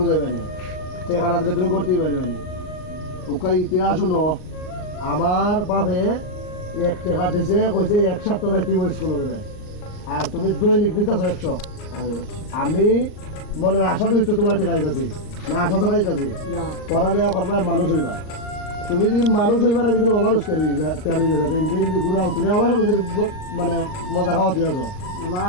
যাবে না টাকা না দিলে তুমি করতেই পারবে না ওকে ইতিহাস শুনো আমার বাপে 1 টাকা দিছে কইছে 1 সপ্তাহ যাইতেই স্কুলে গেলে আর তুমি দৈনিক দিতেছ 100 আমি মনের আশা দিচ্ছ তোমার টাকা দিতেছি না আশা ছাড়া দিতেছি না পড়ালেখা করবা মানুষ হইবা তুমি দিন মানুষ হইবার একদিন অমানুষ তৈরি গেছে দিন ঘুরাও তুমি আমার সাথে মানে মজা খাওয়া তুই আছো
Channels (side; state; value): right; late; 39 ms